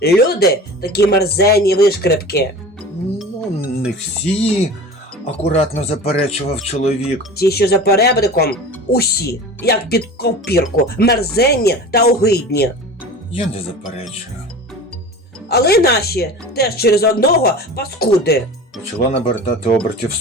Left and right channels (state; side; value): normal; both; correlation 0.36